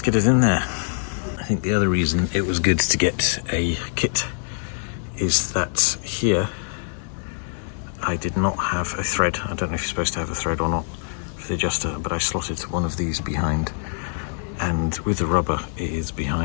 get it in there. I think the other reason it was good to get a kit is that here I did not have a thread. I don't know if you're supposed to have a thread or not for the adjuster, but I slotted one of these behind, and with the rubber it is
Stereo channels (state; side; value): silent; right; 62 dB below the other